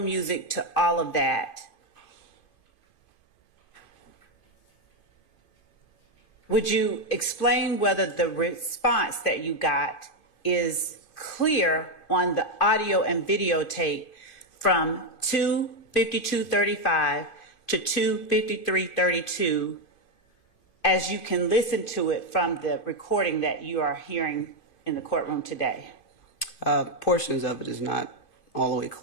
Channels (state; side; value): late; right; 2.5 ms